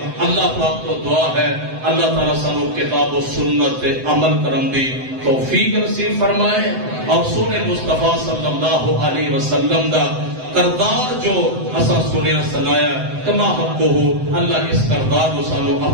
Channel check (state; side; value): late; left; 7.8 ms